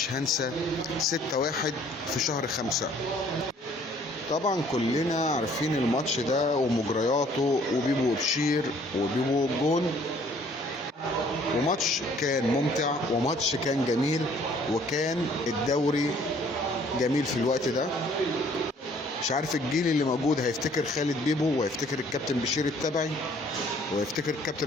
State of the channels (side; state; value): both; normal; correlation 0.59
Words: هنسى 6-1 في شهر 5. طبعا كلنا عارفين الماتش ده ومجرياته وبيبو وبشير وبيبو والجون، وماتش كان ممتع وماتش كان جميل، وكان الدوري جميل في الوقت ده. مش عارف الجيل اللي موجود هيفتكر خالد بيبو وهيفتكر الكابتن بشير التبعي وهيفتكر الكابتن